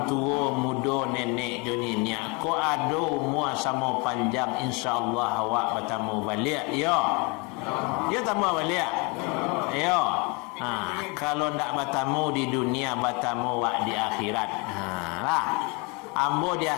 tua muda nenek joninya. Ko ado mua sama panjang. InsyaAllah awak bertamu balik. Yo. Dia tamu balik. Yo. Kalau ndak bertamu di dunia, bertamu wak di akhirat. Lah. Ambo di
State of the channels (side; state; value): right; quieter; 30.0 dB